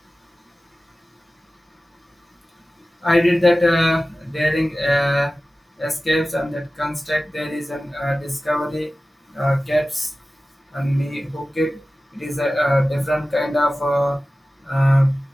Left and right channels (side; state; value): both; normal; correlation 0.96